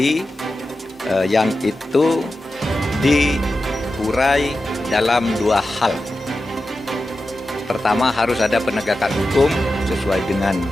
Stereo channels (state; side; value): normal; both; correlation 0.92